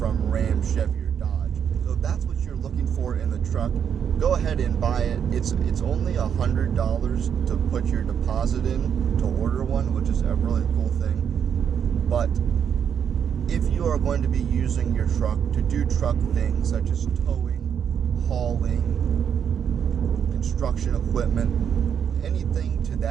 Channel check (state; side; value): quieter; left; 8.0 dB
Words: Ram, Chevy, or Dodge. So if that's what you're looking for in the truck, go ahead and buy it. It's only $100 to put your deposit in to order one, which is a really cool thing. But if you are going to be using your truck to do truck things such as towing, hauling, construction equipment, anything to